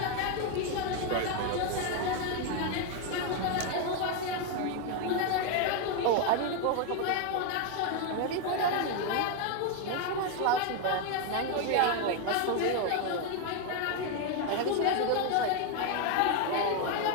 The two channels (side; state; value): both; different; correlation 0.01